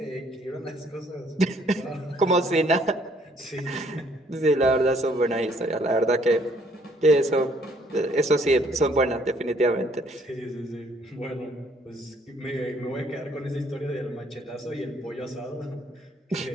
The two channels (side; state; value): both; normal; correlation 0.64